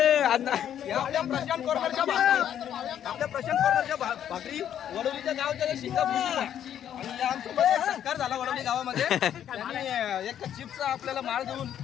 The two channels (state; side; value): quieter; right; 10.0 dB